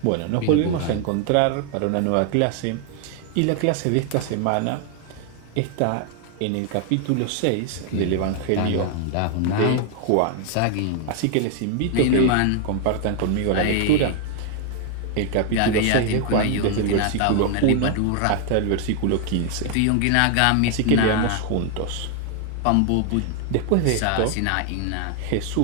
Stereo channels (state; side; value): different; both; correlation 0.00